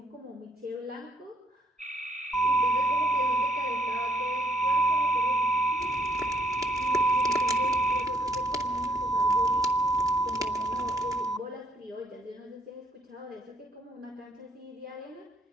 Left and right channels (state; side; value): normal; both; correlation 0.68